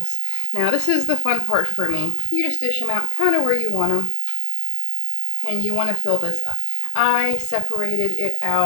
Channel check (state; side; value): different; both; correlation 0.00